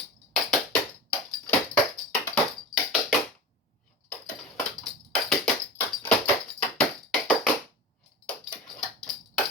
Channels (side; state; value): both; normal; correlation 0.30